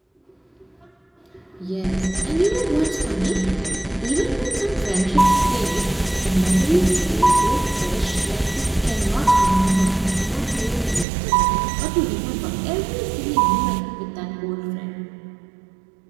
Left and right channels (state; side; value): drops out; left; at 11.1 s